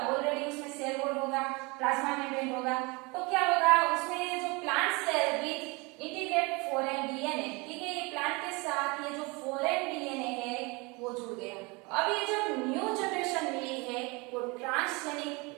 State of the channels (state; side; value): quieter; left; 27.2 dB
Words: ऑलरेडी उसमें सेल वॉल होगा, प्लाज्मा मेम्ब्रेन होगा, तो क्या होगा, उसमें जो plant cell with integrate foreign DNA, ठीक है, ये प्लांट के साथ ये जो फॉरेन डीएनए है वो जुड़ गया। अब ये जो न्यू जनरेशन मिली है